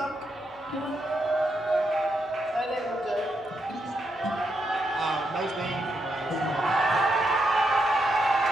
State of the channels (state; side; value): normal; both; correlation 0.81